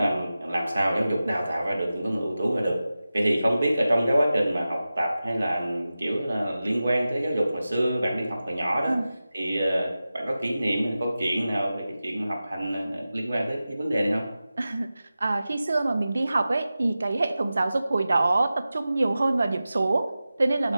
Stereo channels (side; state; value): both; inverted; correlation -0.95